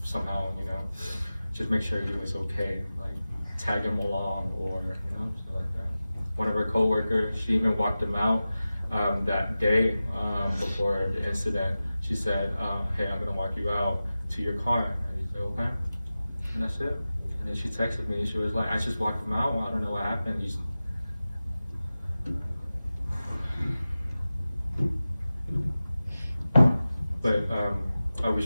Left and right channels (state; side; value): inverted; both; correlation -0.95